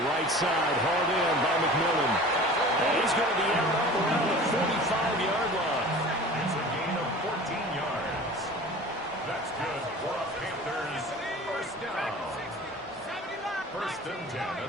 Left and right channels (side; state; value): both; normal; correlation 0.40